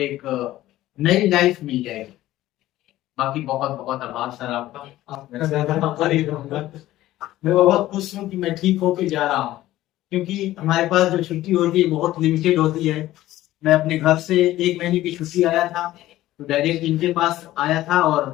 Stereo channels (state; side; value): quieter; right; 15.2 dB